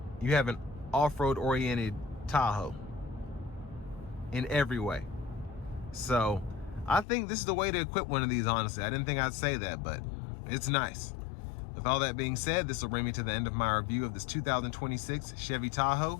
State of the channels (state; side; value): drops out; right; at 7.1 s